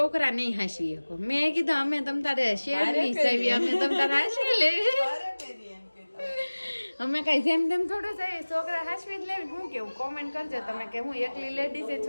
નહીં હાંસવી શકો. મેં કીધું અમે તમ તારે શેર નહીં સાવી, અમે તમ તારે હાંસવી લેવી. અમે કઈ જેમ તેમ થોડું જાય, છોકરા હાંસવી જ લેવી. હું કેવું કોમેન્ટ કરજો તમે કે હું એકલી લેડીઝ એ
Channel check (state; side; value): inverted; both; correlation -1.00